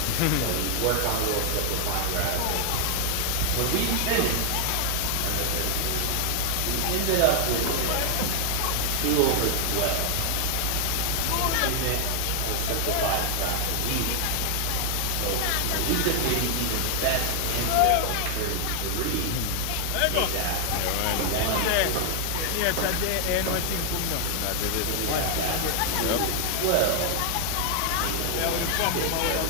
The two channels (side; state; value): both; different; correlation 0.00